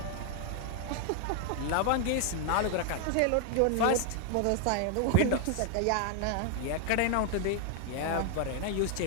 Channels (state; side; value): different; both; correlation 0.00